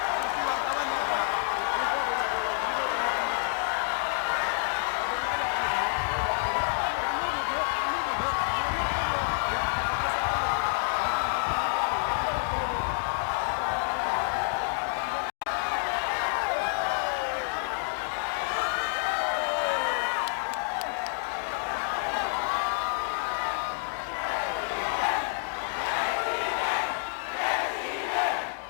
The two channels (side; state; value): right; silent; 59 dB below the other